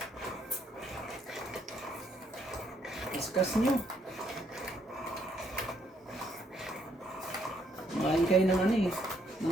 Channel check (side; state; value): both; normal; correlation 0.71